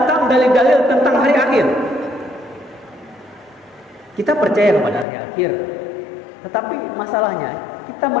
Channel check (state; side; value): drops out; right; at 5.1 s